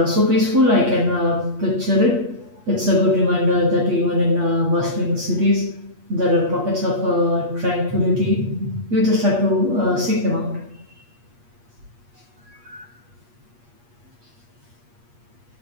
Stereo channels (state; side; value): late; left; 8.4 ms